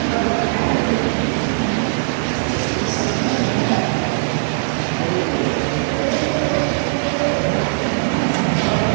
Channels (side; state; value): left; silent; 66 dB below the other